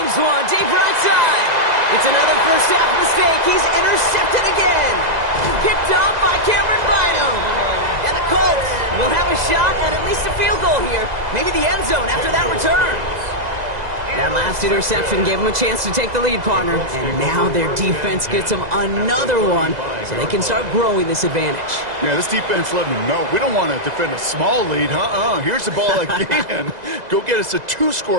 one, deep right side. It's another first half mistake. He's intercepted again. Picked off by Cameron Bynum. And the Colts will have a shot at least a field goal here. Maybe the end zone after that return. That last interception gave them a chance to take the lead, partner. And now their defense gets them another one so they can start growing this advantage. Yeah, this defense letting them know we don't want to defend a small lead. Here's the ball again. Go get us a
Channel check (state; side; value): late; left; 2.0 ms